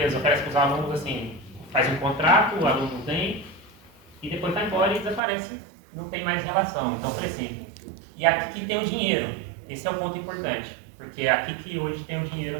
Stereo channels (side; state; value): left; drops out; at 5.2 s